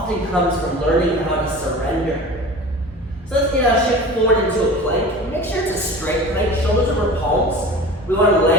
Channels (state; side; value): normal; both; correlation 0.37